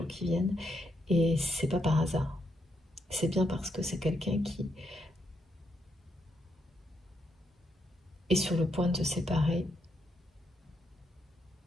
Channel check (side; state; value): both; normal; correlation 0.79